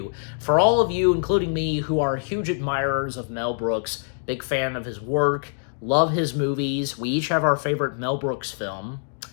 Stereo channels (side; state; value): right; silent; digital silence